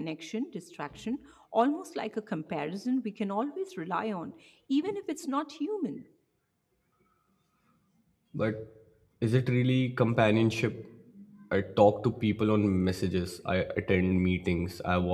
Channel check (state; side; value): identical; both; correlation 1.00